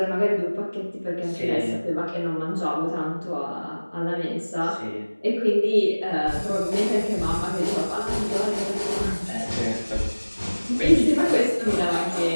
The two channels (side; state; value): both; inverted; correlation -1.00